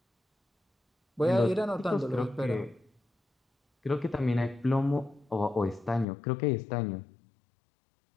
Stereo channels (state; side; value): drops out; right; at 6.1 s